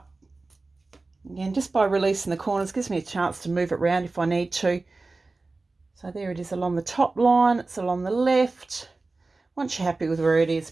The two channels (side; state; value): left; quieter; 3.5 dB